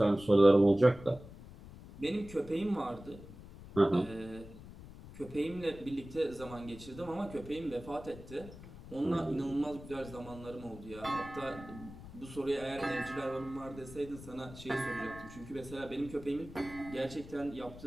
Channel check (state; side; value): noise; left; rumble, 16 dB below the sound